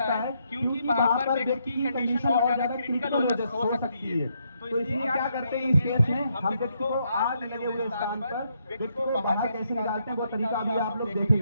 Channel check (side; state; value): both; inverted; correlation -0.76